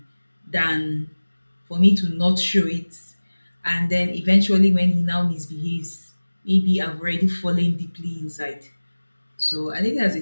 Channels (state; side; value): inverted; both; correlation -1.00